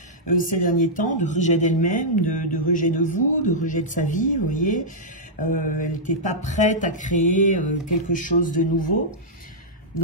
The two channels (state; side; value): normal; both; correlation -0.10